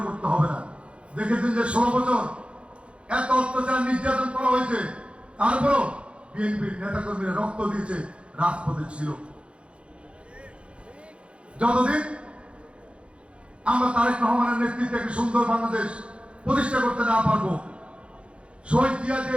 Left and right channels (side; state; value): left; late; 0.059 ms